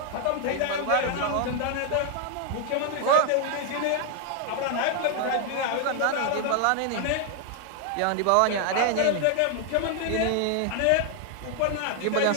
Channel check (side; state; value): both; different; correlation 0.01